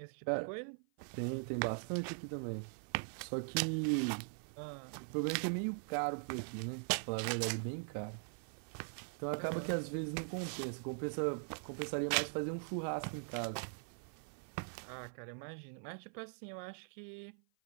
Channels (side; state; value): left; silent; 50 dB below the other